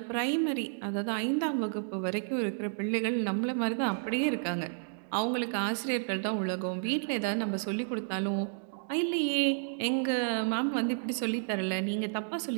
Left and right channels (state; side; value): silent; left; digital silence